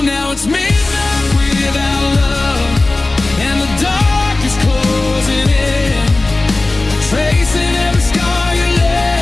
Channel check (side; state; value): right; quieter; 3.1 dB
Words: Now it's midnight without love, and the dark is closing in, tracing every scar you